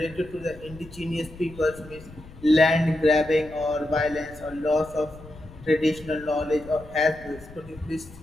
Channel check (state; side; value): noise; left; rumble, 18 dB below the sound